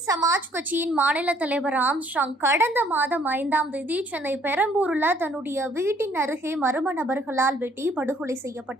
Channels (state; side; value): normal; both; correlation 0.62